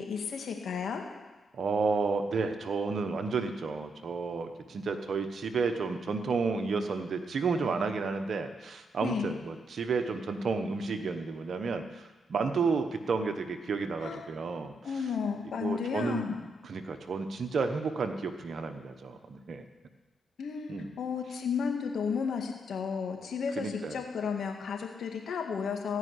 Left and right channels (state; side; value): normal; both; correlation 0.78